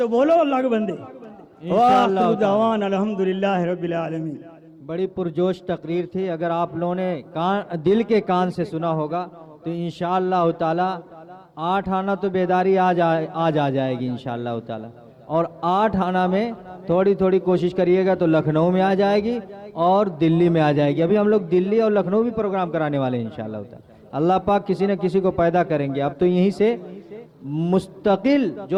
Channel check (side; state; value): both; identical; correlation 1.00